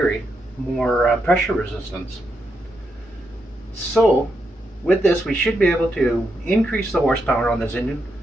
more pressure resistance. So, with this, we should be able to increase the horsepower on this engine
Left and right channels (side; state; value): both; normal; correlation 0.82